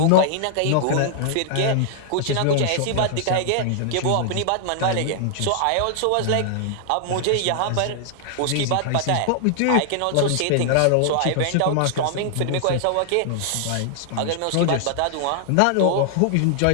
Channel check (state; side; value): different; both; correlation -0.01